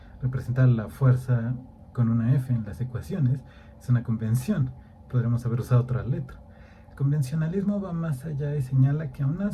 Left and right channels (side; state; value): both; identical; correlation 1.00